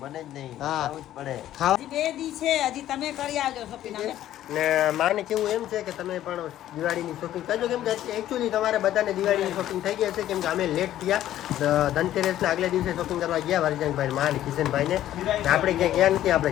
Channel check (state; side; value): quieter; right; 12.7 dB